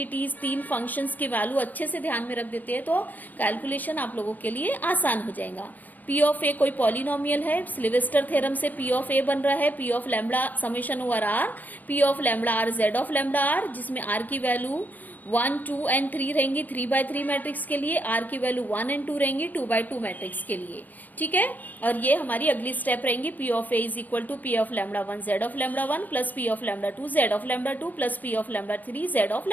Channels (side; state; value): right; late; 0.083 ms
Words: 3 फंक्शंस की वैल्यू अच्छे से ध्यान में रख देते हैं तो कैलकुलेशन आप लोगों के लिए आसान हो जाएगा. P ऑफ A कोई पॉलिनोमियल है. सिल्वेस्टर थ्योरम से P ऑफ A बन रहा है P of lambda summation over R P of lambda R Z of lambda R जिसमें R की वैल्यू 1, 2 एंड 3 रहेंगी 3x3 मैट्रिक्स के लिए. R की वैल्यू 1 एंड 2 रहेंगी 2x2 मैट्रिक्स के लिए. ठीक है. और ये हमारी अगली स्टेप रहेंगी P of A is equal to P of lambda 1 Z of lambda 1 plus P of lambda 2 Z of lambda 2 plus P of lambda 3 Z of